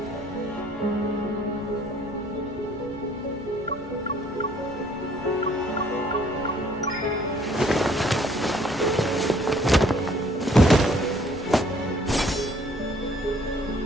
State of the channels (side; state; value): both; normal; correlation 0.60